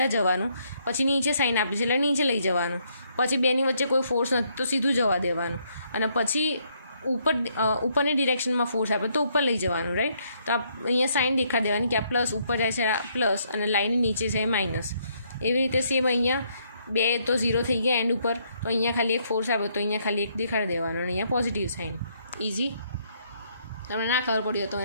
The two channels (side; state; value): both; inverted; correlation -0.71